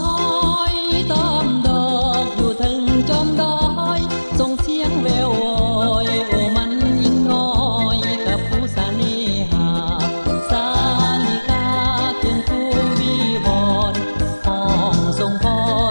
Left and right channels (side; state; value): both; inverted; correlation -1.00